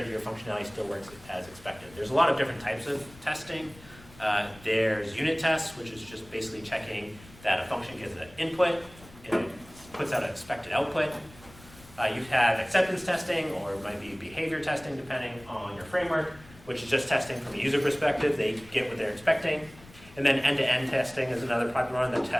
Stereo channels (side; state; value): left; noise; rumble, 22 dB below the sound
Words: that your functionality still works as expected. There's a lot of different types of testing. There's unit tests, which is just basically checking that a function gets an input and it puts out an expected output. You have acceptance testing, or it might be behavior testing, depending on your framework, which is just testing from a user perspective. They get what they're expecting. And then end-to-end testing is another popular one that